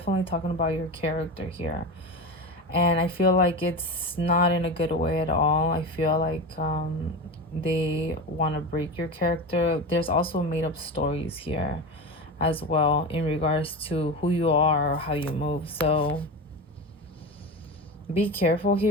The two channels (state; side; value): normal; both; correlation 0.24